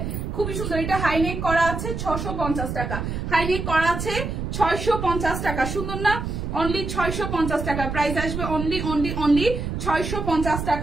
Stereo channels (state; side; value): noise; right; rumble, 4 dB below the sound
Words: খুবই সুন্দর। এটা হাইনেক করা আছে 650 টাকা, হাইনেক করা আছে 650 টাকা, সুন্দর না? অনলি 650 টাকা, প্রাইস আসবে অনলি অনলি অনলি 650